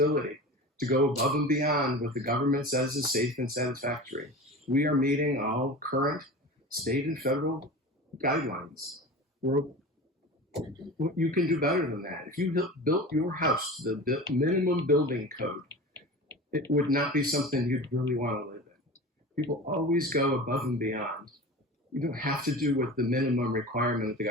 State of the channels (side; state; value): both; normal; correlation 0.33